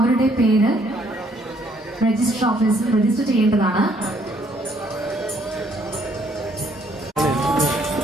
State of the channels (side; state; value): both; normal; correlation 0.66